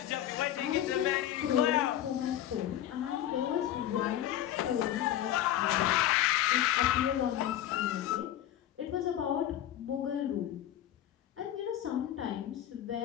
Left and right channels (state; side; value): quieter; right; 12.0 dB